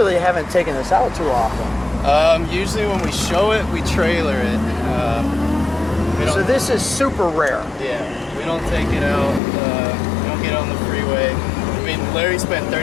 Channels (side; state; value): right; drops out; at 9.4 s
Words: haven't taken this out too often. Usually when we show it, we trailer it. So this is super rare. Yeah, we don't take it out. We don't get on the freeway. I mean, Larry spent